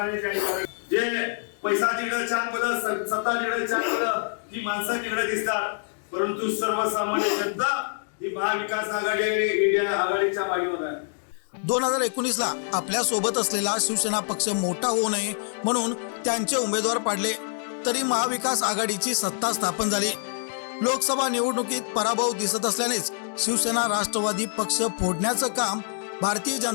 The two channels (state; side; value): silent; right; digital silence